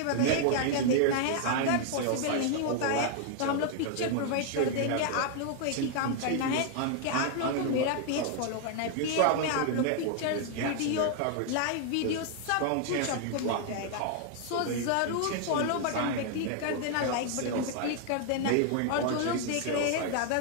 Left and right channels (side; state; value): both; different; correlation 0.00